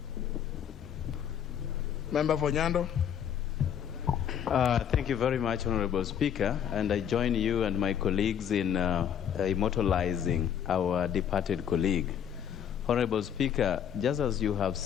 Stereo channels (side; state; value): right; quieter; 8.9 dB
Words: Member for Nyando. Thank you very much, Honorable Speaker, and I join you and my colleagues in immortalizing our departed colleague. Honorable Speaker, just as you have